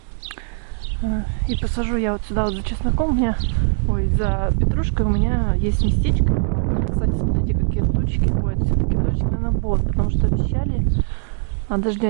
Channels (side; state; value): left; silent; digital silence